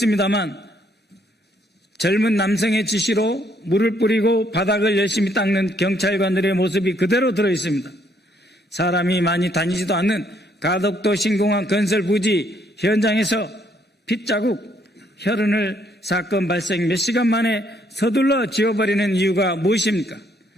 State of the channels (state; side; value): normal; both; correlation 0.69